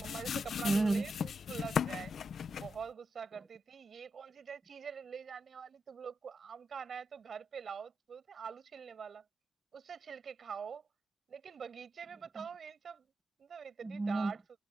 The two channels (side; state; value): both; normal; correlation 0.84